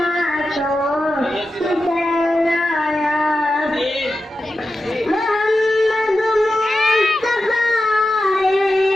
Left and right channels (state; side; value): normal; both; correlation 0.91